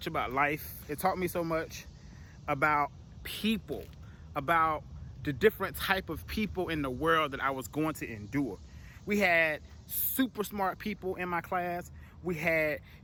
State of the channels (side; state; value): both; identical; correlation 1.00